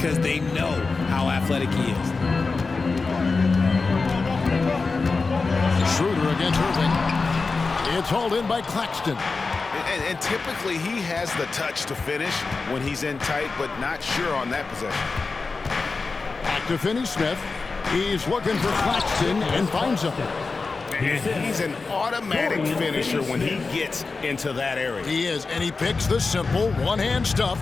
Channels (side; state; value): right; quieter; 4.2 dB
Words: they know how athletic he is. Schroeder against Irving. It's hauled in by Claxton. And typically he has the touch to finish when he's in tight, but not sure on that possession. Back to Finney-Smith. He's looking for Claxton and finds him. And he's an automatic finisher when he gets into that area. He is, and he picks the simple one-hand stuff